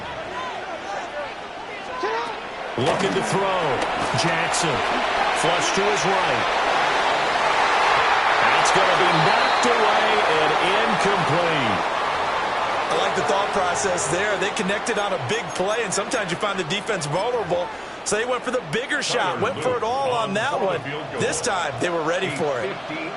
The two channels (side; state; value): both; identical; correlation 1.00